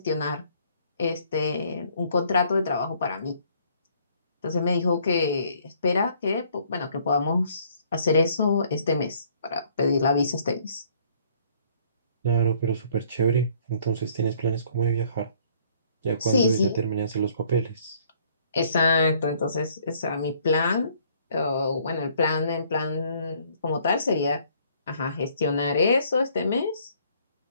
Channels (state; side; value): inverted; both; correlation -0.62